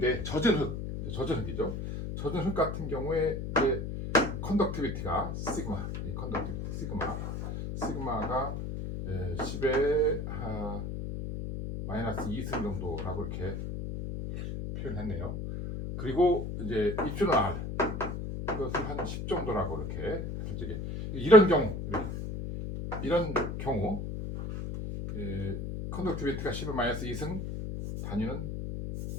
젖은 흙이죠. 젖은 흙 같은 경우에 이제 컨덕티비티가 시그마가 10의 마이너스 2승 정도라고 이렇게 표현했네요. 그리고 이제 입주는 R 이것을 한 10 정도라고 이렇게 솔직히 이런 경우 컨덕티비티가 10의 마이너스 2승 단위는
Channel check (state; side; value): noise; left; hum, 5 dB below the sound